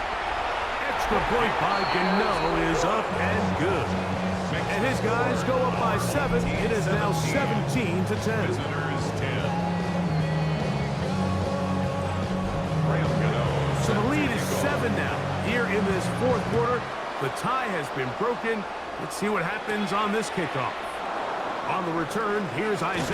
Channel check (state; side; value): identical; both; correlation 1.00